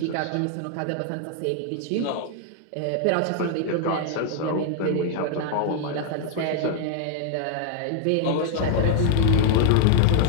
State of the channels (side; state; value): both; different; correlation 0.00